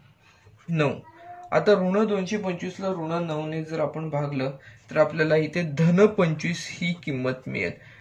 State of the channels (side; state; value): both; identical; correlation 1.00